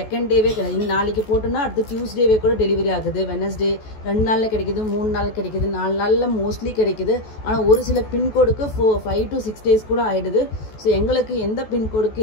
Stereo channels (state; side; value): late; right; 14 ms